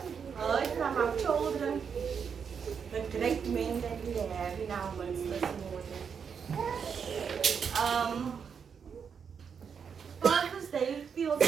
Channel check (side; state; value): left; quieter; 6.7 dB